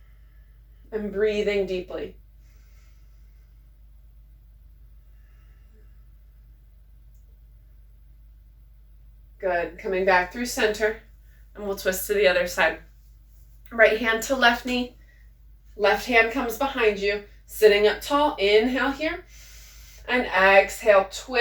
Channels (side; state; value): both; identical; correlation 1.00